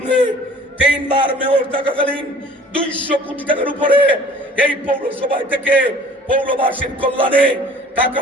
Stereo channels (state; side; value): normal; both; correlation 0.49